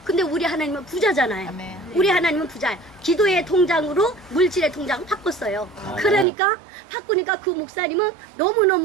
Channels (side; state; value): left; drops out; at 6.2 s